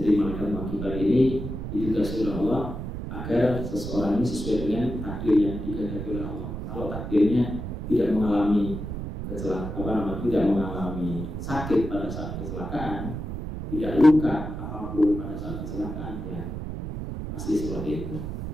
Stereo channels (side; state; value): right; noise; rumble, 6 dB below the sound